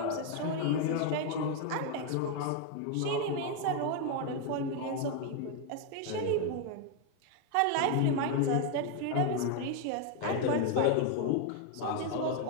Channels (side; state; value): both; different; correlation 0.01